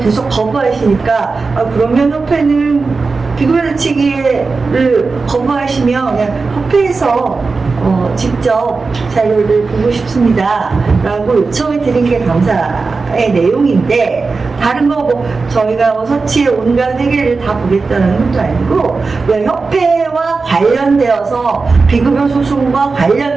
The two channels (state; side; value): quieter; left; 4.2 dB